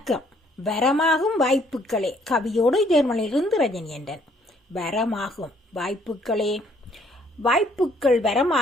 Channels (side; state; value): both; normal; correlation 0.64